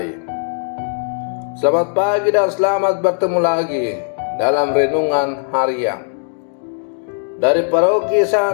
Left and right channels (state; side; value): silent; right; 67 dB below the other